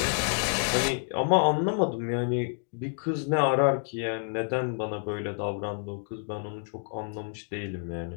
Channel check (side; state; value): right; silent; 59 dB below the other